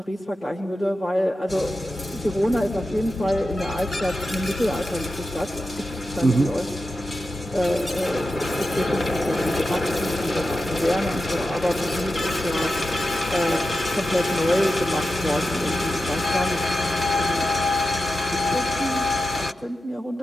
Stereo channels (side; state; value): both; normal; correlation 0.91